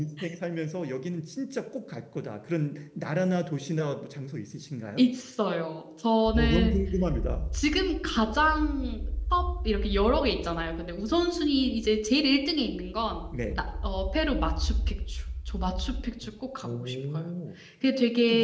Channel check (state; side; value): identical; both; correlation 1.00